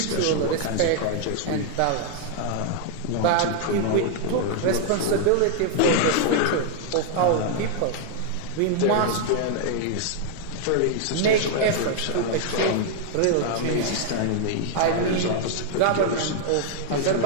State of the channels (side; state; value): both; different; correlation 0.00